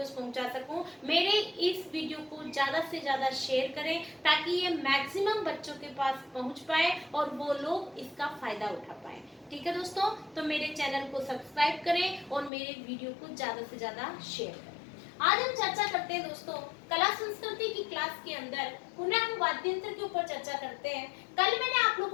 पहुंचा सकूं, मेरे इस वीडियो को ज्यादा से ज्यादा शेयर करें ताकि ये मैक्सिमम बच्चों के पास पहुंच पाए और वो लोग इसका फायदा उठा पाए। ठीक है दोस्तों, तो मेरे चैनल को सब्सक्राइब करें और मेरे वीडियो को ज्यादा से ज्यादा शेयर करें। आज हम चर्चा करते हैं दोस्तों कला संस्कृति की क्लास के अंदर पुनः हम वाद्य यंत्र के ऊपर चर्चा करते हैं। कल मैंने आप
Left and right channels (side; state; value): right; drops out; at 12.5 s